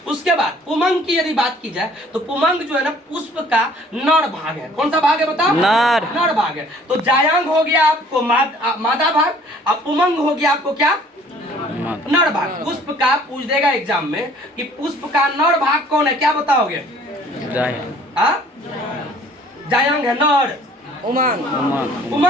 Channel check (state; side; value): normal; both; correlation 0.55